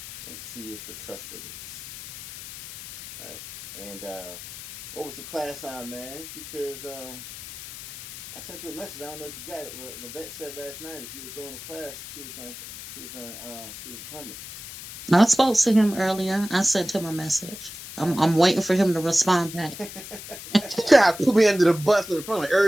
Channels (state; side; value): noise; left; hiss, 12 dB below the sound